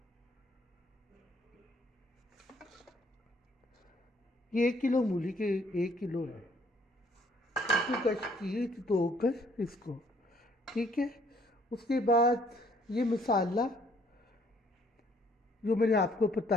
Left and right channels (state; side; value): normal; both; correlation 0.63